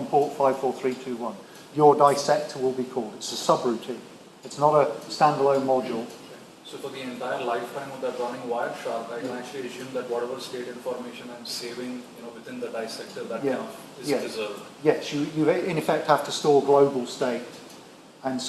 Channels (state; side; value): identical; both; correlation 1.00